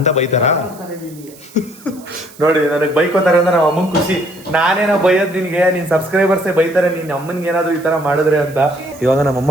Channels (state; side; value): noise; right; hiss, 22 dB below the sound